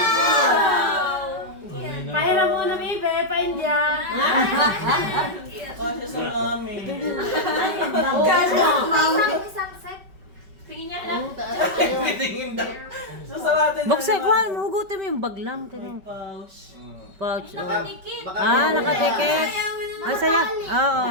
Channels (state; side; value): late; left; 5.2 ms